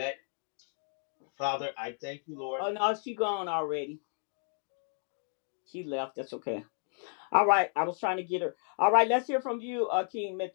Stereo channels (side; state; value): right; silent; 56 dB below the other